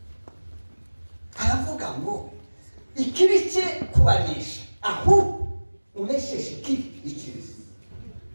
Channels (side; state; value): both; inverted; correlation -1.00